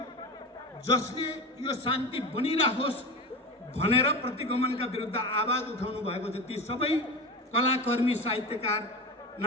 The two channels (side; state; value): both; normal; correlation 0.26